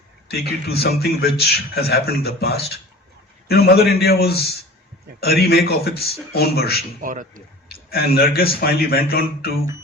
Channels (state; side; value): normal; both; correlation 0.41